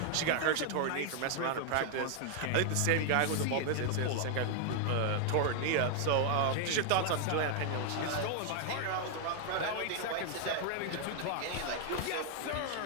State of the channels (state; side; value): different; both; correlation 0.00